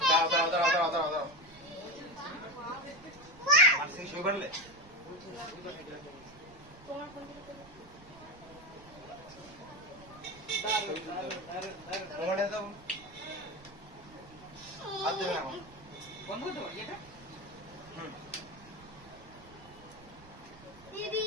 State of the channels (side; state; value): right; noise; rumble, 21 dB below the sound